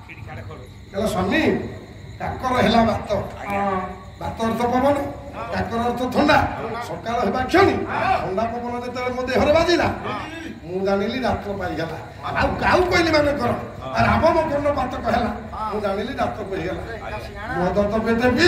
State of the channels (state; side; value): identical; both; correlation 1.00